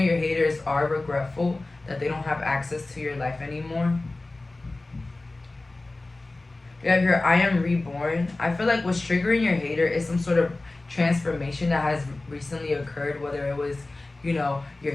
your haters are regretful that they don't have access to your life anymore. We have here, I am reborn. I feel like what's triggering your hater is some sort of transformation that has recently occurred, whether it was, your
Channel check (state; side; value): quieter; right; 3.0 dB